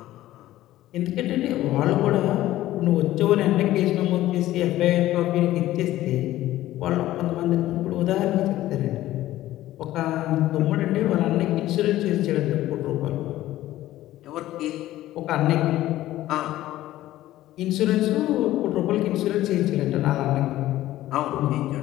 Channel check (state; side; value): quieter; right; 14.9 dB